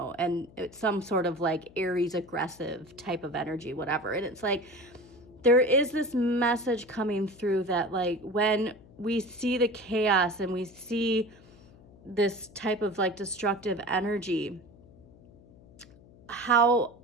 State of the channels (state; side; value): noise; left; hum, 24 dB below the sound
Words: and it's some sort of like Aries aggressive type of energy, whatever. And it's like, there is this message coming through that like when we see the chaos and we see this type of like destructive energy, how